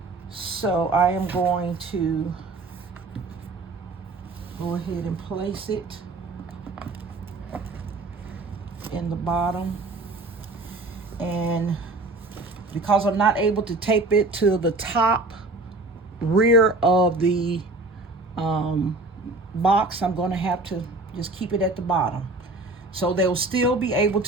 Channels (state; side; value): quieter; left; 3.1 dB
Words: So I am going to go ahead and place it in the bottom. And because I'm not able to tape it to the top rear of the box, I'm going to have to just keep it at the bottom. So they'll still be able